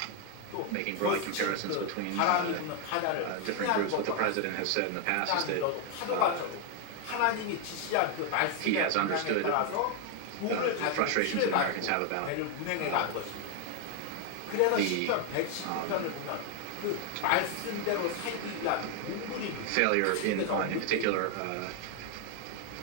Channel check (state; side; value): different; both; correlation 0.01